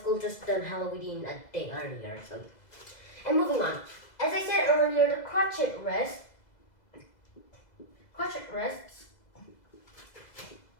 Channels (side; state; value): right; late; 2.0 ms